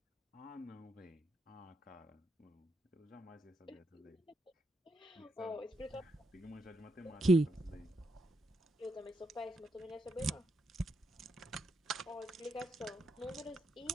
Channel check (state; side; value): normal; both; correlation 0.81